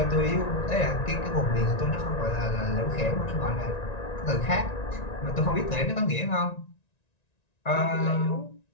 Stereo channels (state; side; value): late; right; 1.9 ms